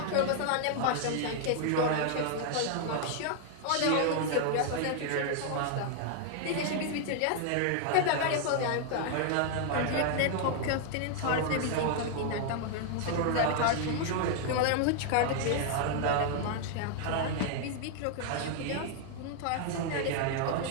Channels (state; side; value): different; both; correlation 0.00